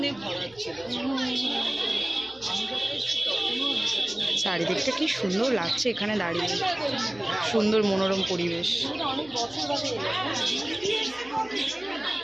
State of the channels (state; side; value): noise; right; hum, 25 dB below the sound